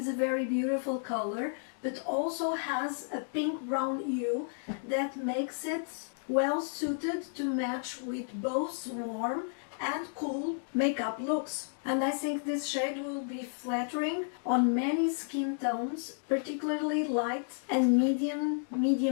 a very beautiful color, but also has a pink-brown hue that makes it well suited to match with both warm and cool makeup looks. And I think this shade will be flattering on many skin tones, particularly light and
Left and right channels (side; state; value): right; silent; digital silence